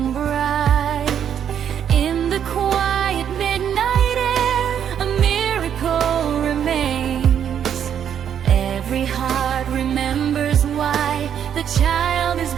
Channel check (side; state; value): left; quieter; 8.9 dB